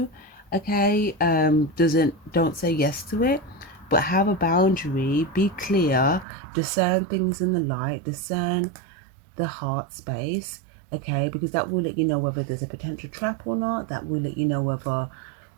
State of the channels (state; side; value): drops out; left; at 6.2 s